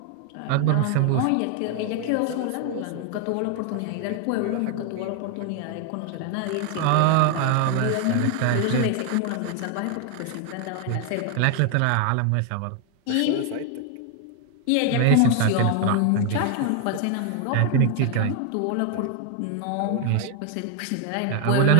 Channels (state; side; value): different; both; correlation 0.00